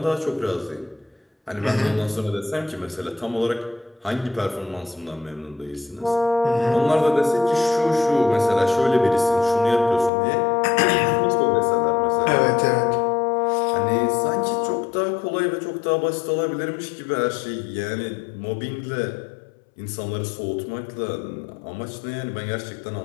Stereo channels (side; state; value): right; drops out; at 10.1 s